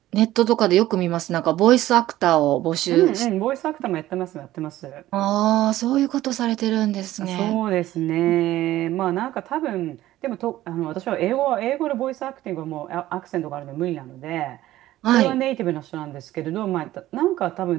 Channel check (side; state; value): left; quieter; 14.9 dB